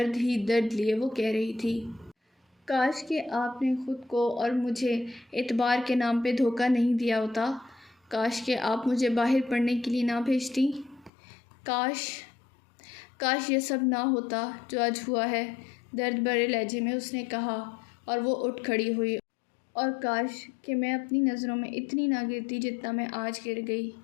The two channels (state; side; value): drops out; right; at 11.1 s